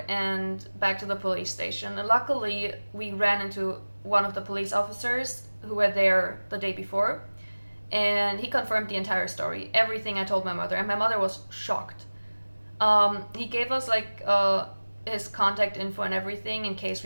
and back to the police station. And luckily, we ran into one of the police officers who were there the day before, and he confirmed the entire story, everything I told my mother, and my mother was shocked. He gave us like his contact info and everything in case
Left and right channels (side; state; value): both; inverted; correlation -1.00